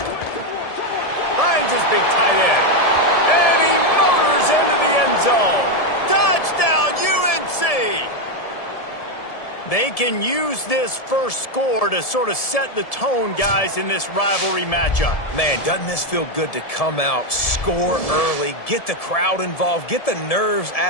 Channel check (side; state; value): right; late; 1.7 ms